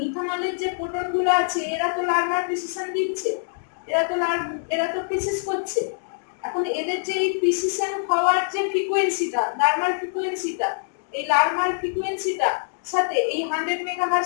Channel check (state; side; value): silent; right; digital silence